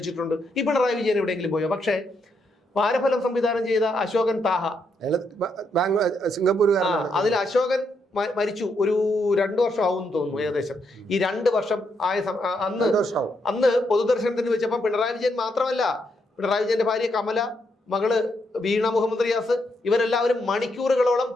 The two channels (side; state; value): both; normal; correlation 0.78